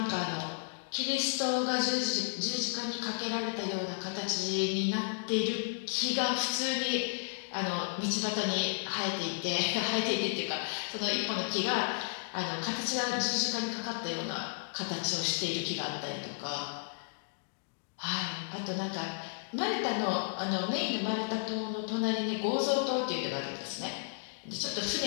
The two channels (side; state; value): right; silent; digital silence